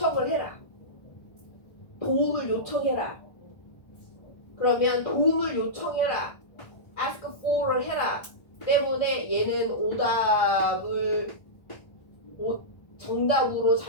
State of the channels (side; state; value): right; late; 1.4 ms